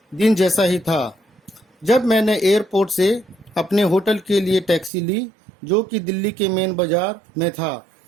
दिन जैसा ही था। जब मैंने एयरपोर्ट से अपने होटल के लिए टैक्सी ली, जो कि दिल्ली के मेन बाजार में था,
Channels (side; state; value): left; drops out; at 4.9 s